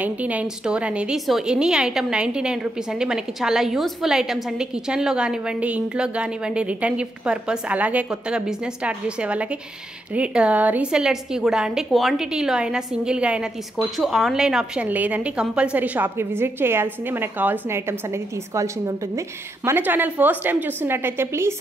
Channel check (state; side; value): normal; both; correlation 0.82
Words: స్టోర్ అనేది. సో ఎనీ ఐటమ్ 99 రూపీస్ అండి. మనకి చాలా యూస్ఫుల్ ఐటమ్స్ అండి, కిచెన్లో కానివ్వండి, ఇంట్లో కానివ్వండి, రిటర్న్ గిఫ్ట్ పర్పస్, అలాగే కొత్తగా బిజినెస్ స్టార్ట్ చేసే వాళ్ళకి, రీసెల్లర్స్కి కూడా అండి. క్వాంటిటీలో అయినా సింగిల్గా అయినా తీసుకోవచ్చు, ఆన్లైన్ ఆప్షన్ లేదండి. కంపల్సరీ షాప్కి విజిట్ చేయాల్సిందే, మనకు కావాల్సిన ఐటమ్స్ అనేది తీసుకోవాల్సింది ఉంటుంది. మన ఛానల్ ఫస్ట్ టైం చూస్తున్నట్టయితే ప్లీజ్